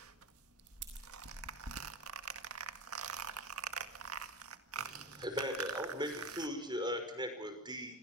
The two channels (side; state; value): both; normal; correlation 0.27